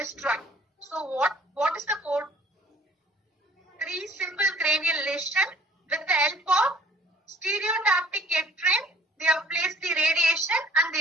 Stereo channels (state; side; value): normal; both; correlation 0.55